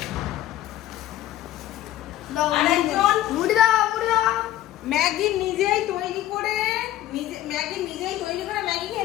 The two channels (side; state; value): right; quieter; 13.8 dB